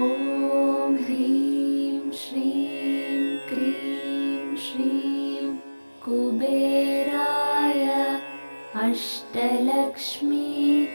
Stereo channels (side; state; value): both; inverted; correlation -1.00